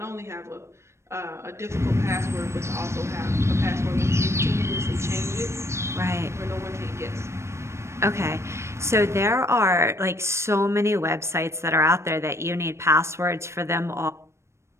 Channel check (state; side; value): late; left; 0.13 ms